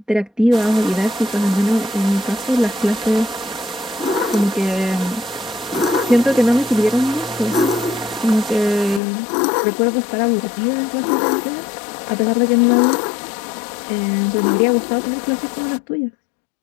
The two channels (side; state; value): right; drops out; at 9.0 s